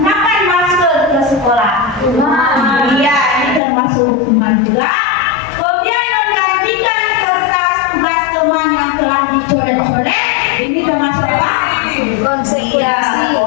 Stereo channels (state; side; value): drops out; right; at 3.6 s